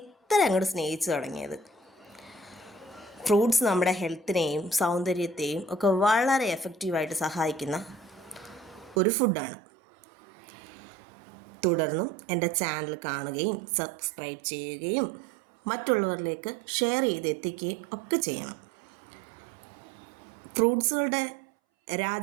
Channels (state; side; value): drops out; left; at 9.0 s